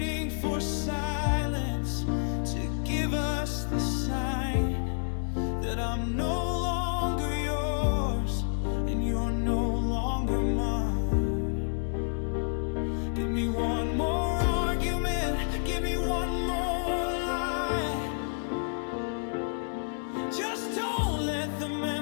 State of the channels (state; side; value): silent; right; 58 dB below the other